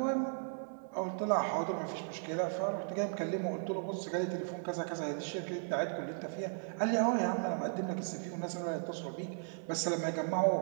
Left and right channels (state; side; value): silent; left; digital silence